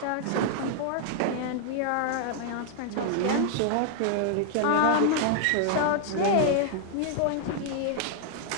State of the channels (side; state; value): both; different; correlation 0.00